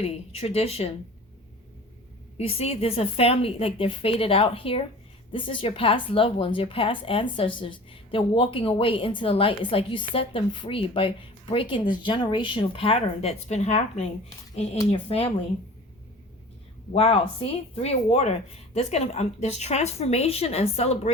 tradition. You see, there's a family, like they're faded out here. This is your past loved ones, your past ancestors. They're walking away into the light. It's like you set them free by breaking this generational pattern that's been happening in your family. Wow, see? 3 of water. There's transformation and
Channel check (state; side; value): normal; both; correlation 0.41